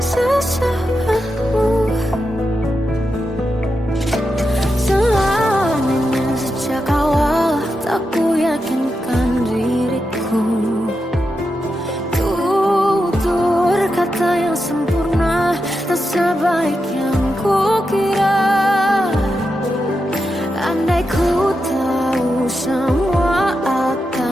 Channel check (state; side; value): normal; both; correlation 0.87